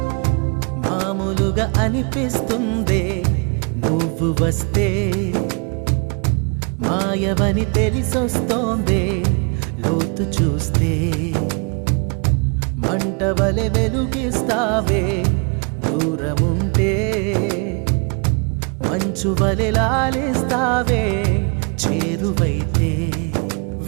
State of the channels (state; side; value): quieter; left; 34.1 dB